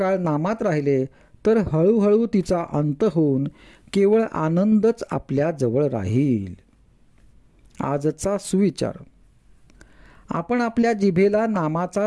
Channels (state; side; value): identical; both; correlation 1.00